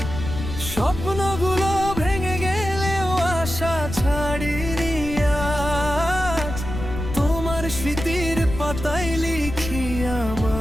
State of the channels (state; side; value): noise; left; rumble, 7 dB below the sound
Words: স্বপ্নগুলো ভেঙে গেলেও আশা ছাড়িনি আজ। তোমার স্মৃতির পাতায় লিখি